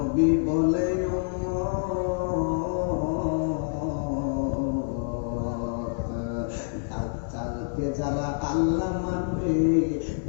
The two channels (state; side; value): silent; right; 56 dB below the other